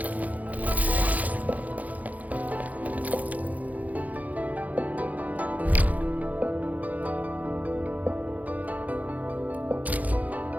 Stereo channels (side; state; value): left; late; 0.076 ms